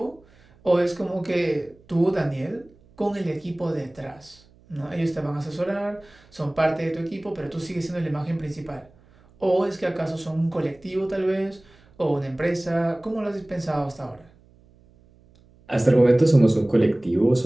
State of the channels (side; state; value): right; noise; hum, 29 dB below the sound